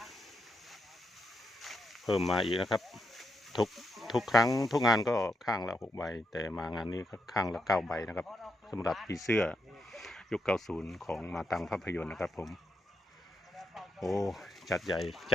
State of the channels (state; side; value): normal; both; correlation 0.81